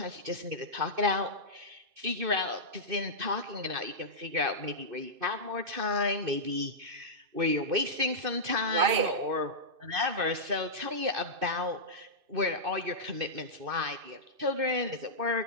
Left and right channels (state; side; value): late; left; 2.5 ms